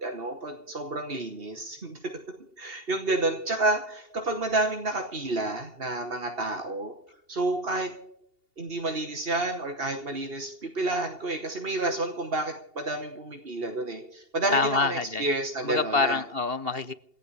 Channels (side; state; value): left; late; 2.8 ms